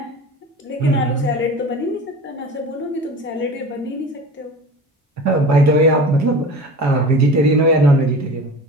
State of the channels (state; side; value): normal; both; correlation 0.36